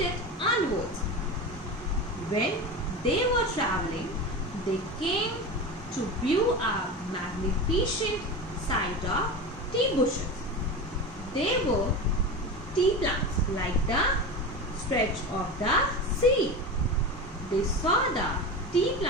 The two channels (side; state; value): both; normal; correlation 0.26